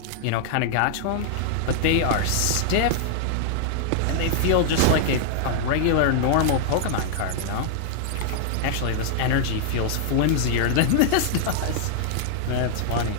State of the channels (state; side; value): different; both; correlation -0.01